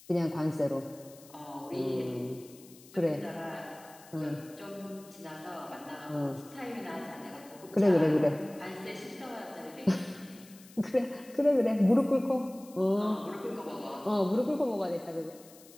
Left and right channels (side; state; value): left; noise; hiss, 22 dB below the sound